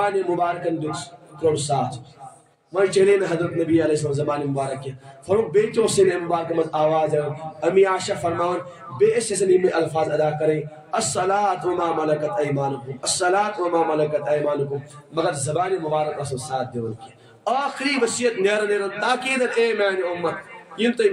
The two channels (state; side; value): identical; both; correlation 1.00